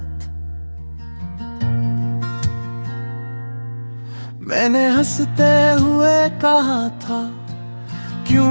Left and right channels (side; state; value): both; inverted; correlation -1.00